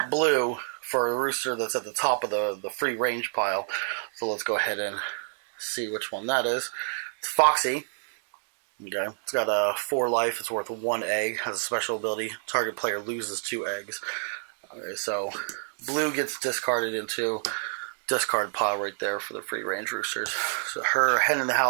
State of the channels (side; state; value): left; silent; digital silence